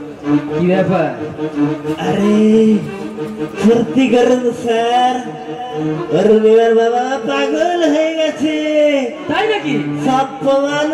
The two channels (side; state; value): both; identical; correlation 1.00